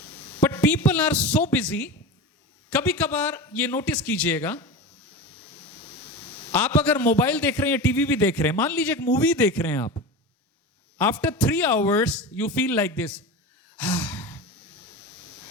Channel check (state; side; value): normal; both; correlation 0.27